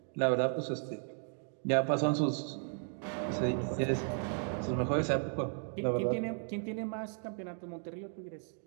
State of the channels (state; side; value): silent; left; 54 dB below the other